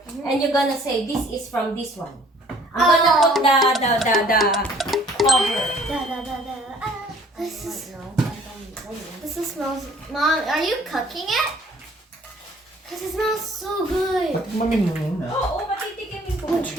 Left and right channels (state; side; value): normal; both; correlation 0.55